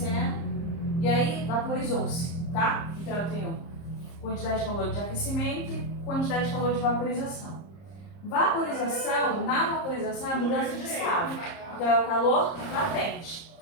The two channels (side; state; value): right; late; 30 ms